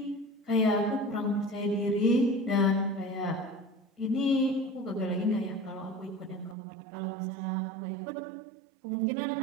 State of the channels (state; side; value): drops out; left; at 6.6 s